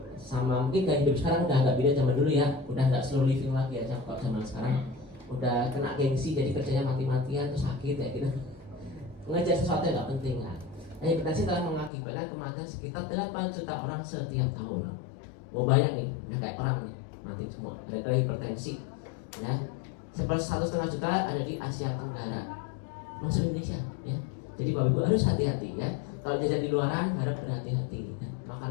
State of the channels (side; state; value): right; drops out; at 11.9 s